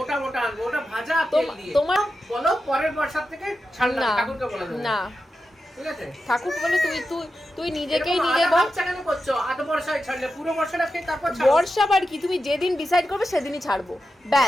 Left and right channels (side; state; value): both; normal; correlation 0.90